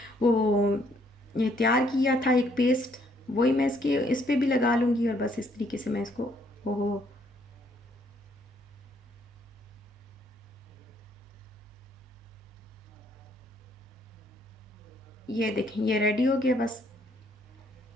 वो ये तैयार किया था एक पेस्ट, वही मैं इसके इस पे भी लगा लूँगी, और बस इस तरीके से मैं इसको ओहो। ये देखें ये रेडी हो गया बस।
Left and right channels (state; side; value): normal; both; correlation 0.68